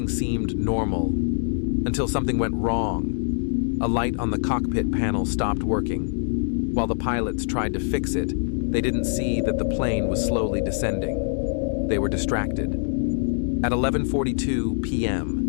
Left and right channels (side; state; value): right; silent; digital silence